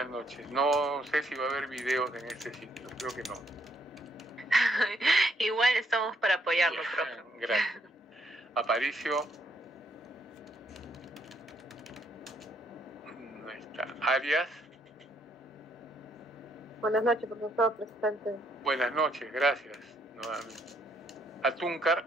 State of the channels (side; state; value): both; normal; correlation 0.71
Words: noches. No sé si va a haber videos en este sitio, creo que no. Igual estamos para apoyarlo, profe. Gracias. Aparicio. No está. Arias. Buenas noches, profesor, presente. Buenas noches, gracias. Nuevamente. Atúncar.